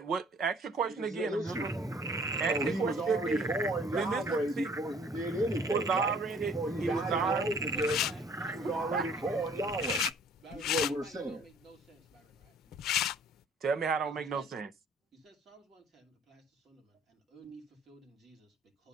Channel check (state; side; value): normal; both; correlation 0.55